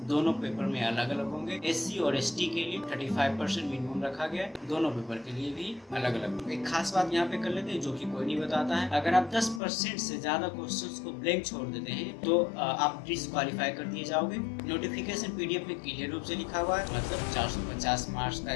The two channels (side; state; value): right; drops out; at 9.6 s